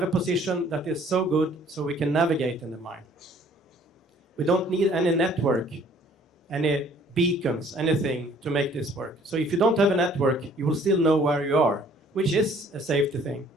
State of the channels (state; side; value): normal; both; correlation 0.57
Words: a position that is so good so we can navigate in the mine. We don't need any network, any beacons, anything to make this work. So if you don't have a network, you will still know where you are, which is a safety thing.